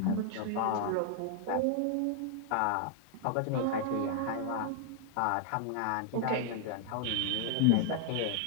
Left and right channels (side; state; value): both; different; correlation 0.00